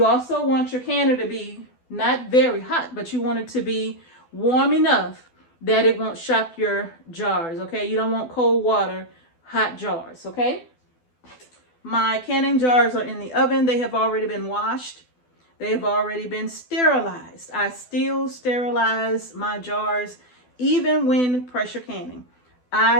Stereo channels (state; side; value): late; right; 12 ms